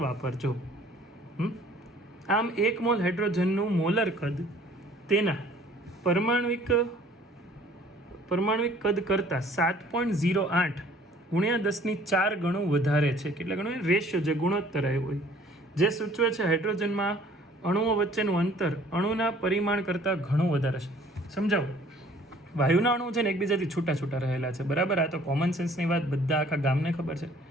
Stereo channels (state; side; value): normal; both; correlation 0.55